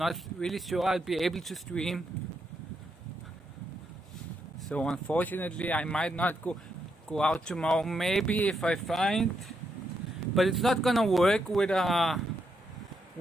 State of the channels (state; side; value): normal; both; correlation 0.80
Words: really sure I'll be able to stream. So unfortunately I might not go out tomorrow. Maybe if I find, but it's not gonna work with an